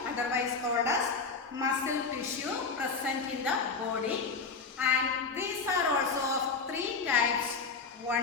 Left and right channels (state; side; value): quieter; right; 4.7 dB